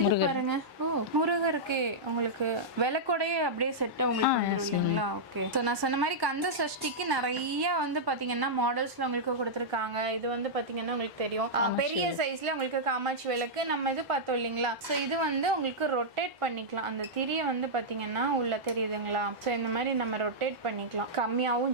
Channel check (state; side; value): normal; both; correlation -0.09